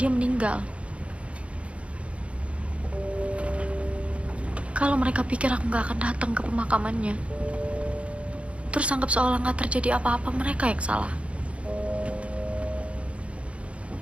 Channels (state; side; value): late; left; 0.061 ms